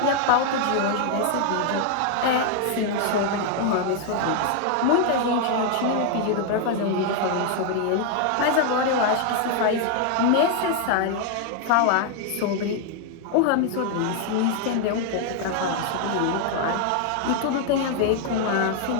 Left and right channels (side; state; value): both; different; correlation 0.00